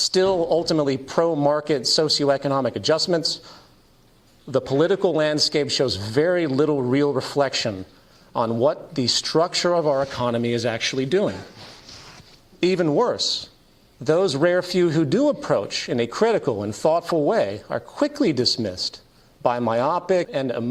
ultimately pro-market socioeconomic adjustments, the political landscape shows very little real reflection on what the structure of our economy is actually doing. Even worse, those rare few who do approach in a critical and thoughtful way are quickly dismissed by myopic and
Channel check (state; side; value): identical; both; correlation 1.00